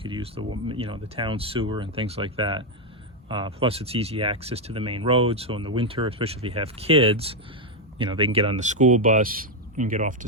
use the town sewer and things like that. Plus, it's easy access to the main road. So in the winter, especially if you have kids, they can get on the school bus and get off to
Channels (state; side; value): normal; both; correlation 0.03